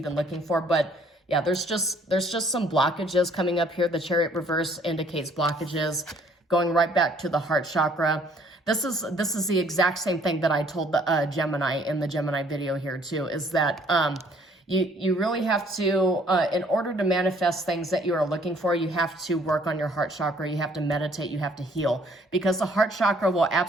looking for. But Yeah, there's just some blockages coming up here. The Chariot reverse indicates blockages going right back to the heart chakra. This is the exact same thing that I told the Gemini in the Gemini video here too, is that you really have to, in order to manifest things that you are looking for, you have to work on your heart chakra, you have to meditate, you have to heal, because the heart chakra will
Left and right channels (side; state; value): both; normal; correlation 0.61